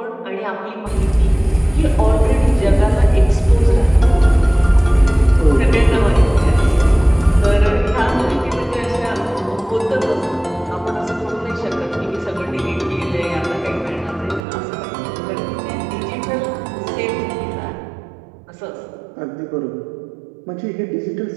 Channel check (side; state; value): left; drops out; at 14.5 s